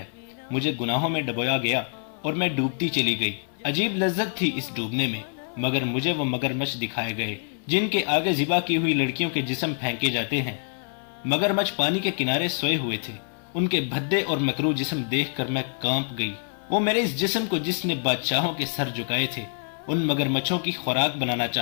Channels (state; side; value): silent; right; 61 dB below the other